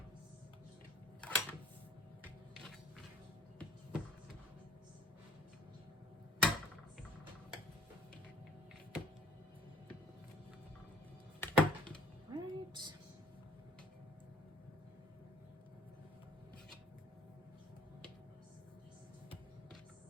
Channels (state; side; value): normal; both; correlation 0.57